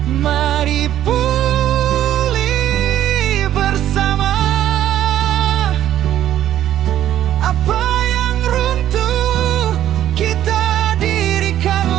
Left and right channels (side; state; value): left; quieter; 11.9 dB